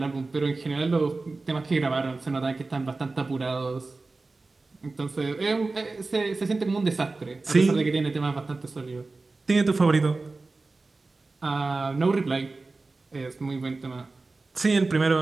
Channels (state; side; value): quieter; left; 3.6 dB